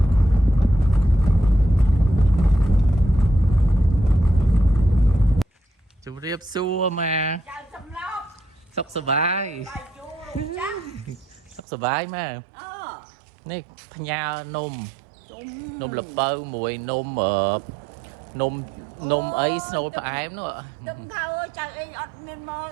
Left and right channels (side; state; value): left; drops out; at 11.6 s